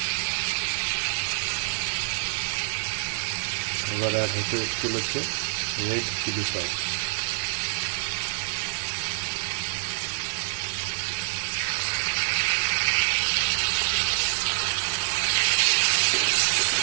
এবার অ্যাড হতে চলেছে red chilli sauce.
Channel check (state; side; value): silent; left; 61 dB below the other